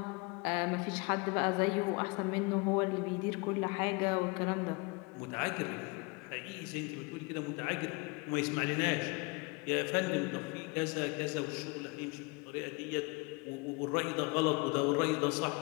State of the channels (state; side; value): quieter; right; 28.4 dB